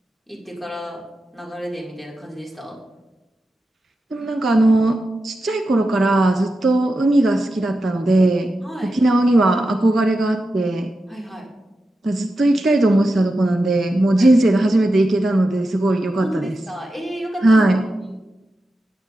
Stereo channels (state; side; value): normal; both; correlation 0.90